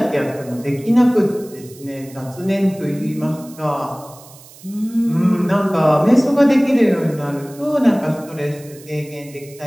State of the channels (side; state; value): right; noise; hiss, 22 dB below the sound